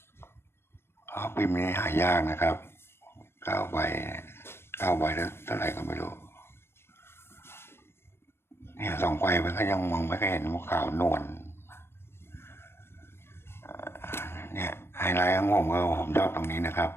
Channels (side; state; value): right; late; 0.12 ms